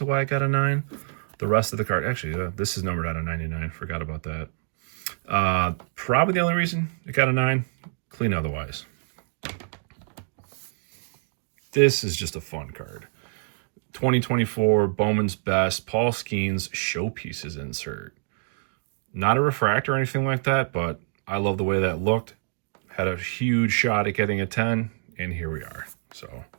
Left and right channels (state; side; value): silent; left; digital silence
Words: why I got a 9. The rest of the card, actually, this is numbered out of 99. Forgot about that. Probably the only reason it got a 9. Clean otherwise. This is just a fun card. 2024 Bowman's Best Paul Skeens Showpieces insert. Not a refractor or anything like that, but I love the way that looked. Had a huge shot at getting a 10, and here we are. So